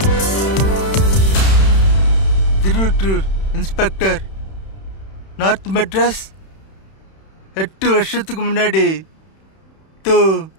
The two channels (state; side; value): late; right; 31 ms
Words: Tiruvottiyur inspector, north Madras. 8 வருஷத்துக்கு முன்னாடி தோ